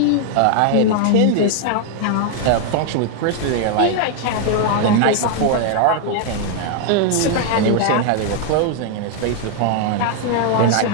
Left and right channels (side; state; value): both; different; correlation 0.00